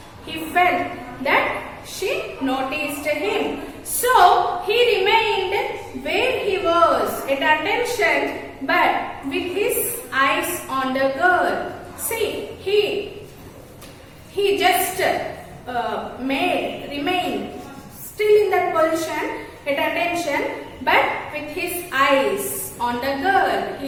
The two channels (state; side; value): identical; both; correlation 1.00